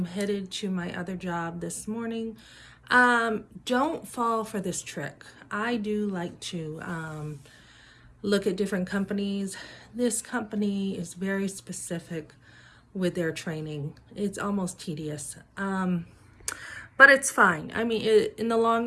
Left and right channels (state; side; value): identical; both; correlation 1.00